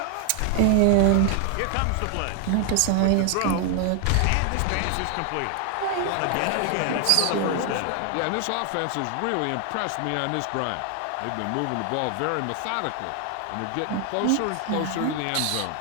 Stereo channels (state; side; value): different; both; correlation 0.00